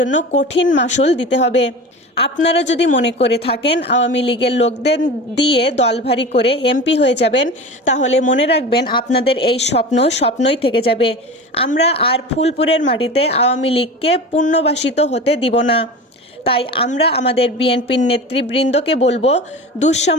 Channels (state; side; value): normal; both; correlation 0.32